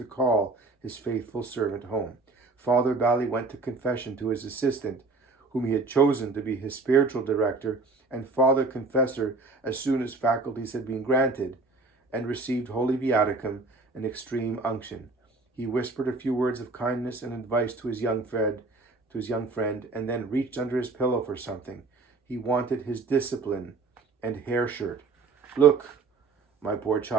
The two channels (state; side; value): quieter; left; 3.8 dB